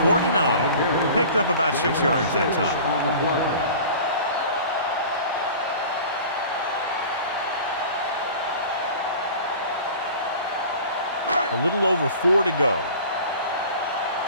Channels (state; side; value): inverted; both; correlation -0.41